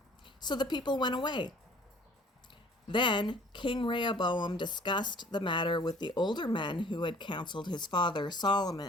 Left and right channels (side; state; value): both; normal; correlation 0.53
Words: So the people went away. Then King Rehoboam discussed the matter with the older men who had counseled his father